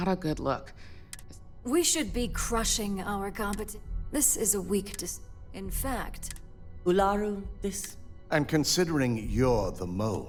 a good look. We should be crushing our competition. This is a weak In fact... Ularu, this... And considering you're the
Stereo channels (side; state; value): both; identical; correlation 1.00